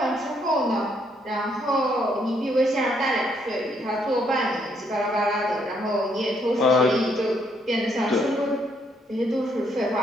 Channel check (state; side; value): normal; both; correlation 0.72